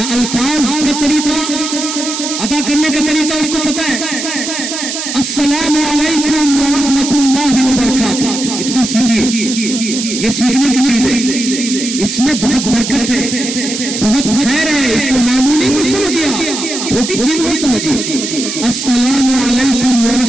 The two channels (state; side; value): noise; right; hiss, 5 dB below the sound